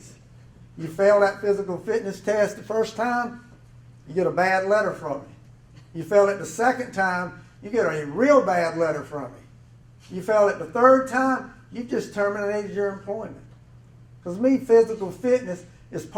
You fail that physical fitness test the first time, you get a bad letter from me. You fail it the second time, you get a real bad letter from me. You fail it the third time, you just terminated your employment. Because me, physical fitness is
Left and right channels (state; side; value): identical; both; correlation 1.00